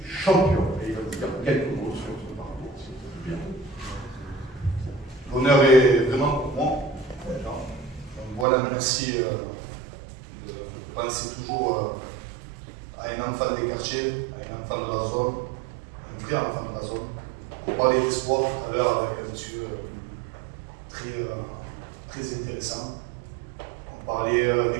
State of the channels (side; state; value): left; drops out; at 8.5 s